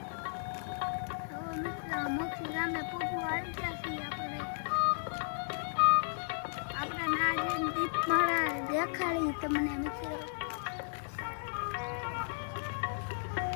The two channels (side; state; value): right; silent; digital silence